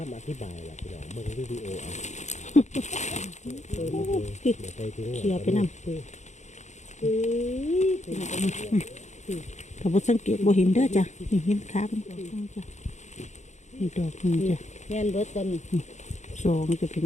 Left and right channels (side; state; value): right; late; 0.34 ms